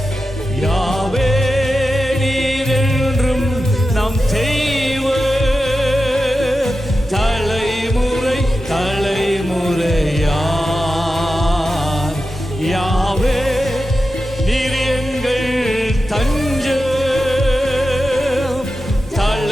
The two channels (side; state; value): both; normal; correlation 0.91